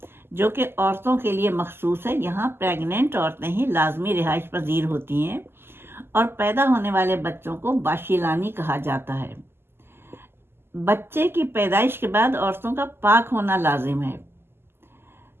جو کہ عورتوں کے لیے مخصوص ہے۔ یہاں پریگننٹ عورتیں ہی لازمی رہائش پذیر ہوتی ہیں، اور پیدا ہونے والے بچوں کو باشیلانی کہا جاتا ہے۔ بچے کی پیدائش کے بعد عورتوں کا پاک ہونا لازم ہے۔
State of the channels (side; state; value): left; late; 0.12 ms